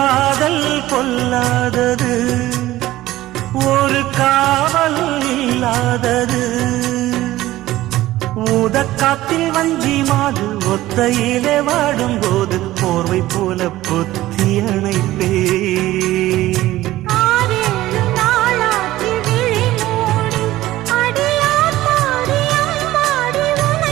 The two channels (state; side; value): quieter; left; 16.0 dB